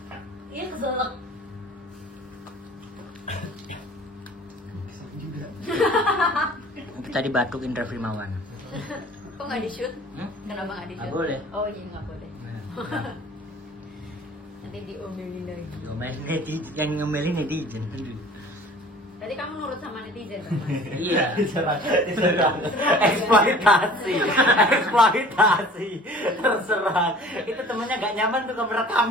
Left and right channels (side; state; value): both; normal; correlation 0.47